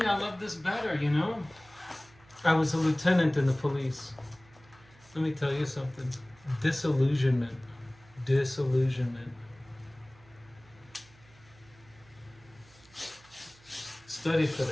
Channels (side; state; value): right; noise; hum, 27 dB below the sound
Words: love this better, you know. I was a lieutenant in the police. Let me tell you something. Disillusionment. Study for